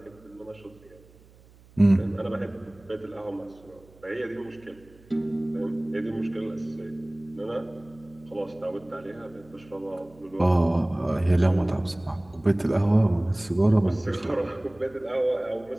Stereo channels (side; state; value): right; noise; hum, 26 dB below the sound